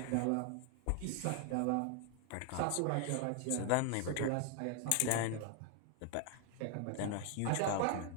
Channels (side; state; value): both; different; correlation 0.00